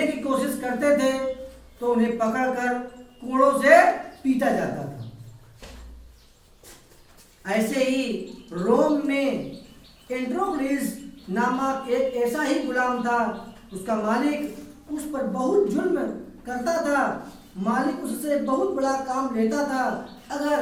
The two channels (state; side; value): identical; both; correlation 1.00